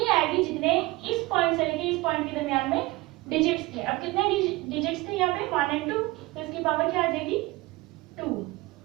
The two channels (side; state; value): left; quieter; 21.0 dB